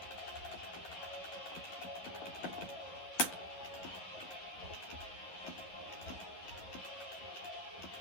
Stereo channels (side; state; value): right; late; 10 ms